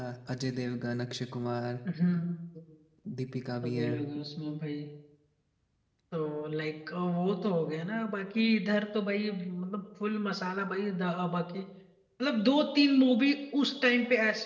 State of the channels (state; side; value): identical; both; correlation 1.00